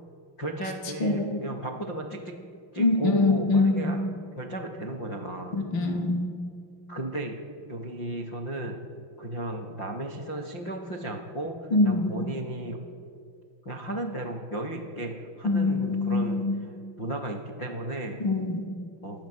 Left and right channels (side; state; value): right; late; 5.9 ms